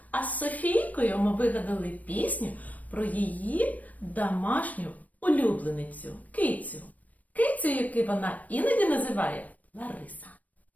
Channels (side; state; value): right; late; 0.073 ms